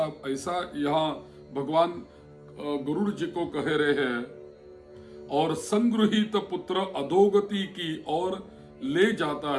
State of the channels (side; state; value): both; identical; correlation 1.00